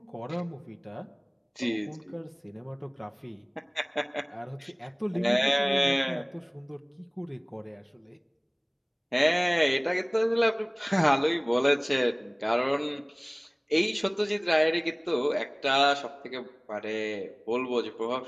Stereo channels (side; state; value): both; identical; correlation 1.00